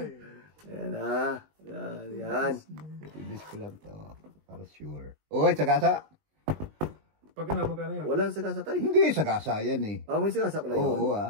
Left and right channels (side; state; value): left; late; 20 ms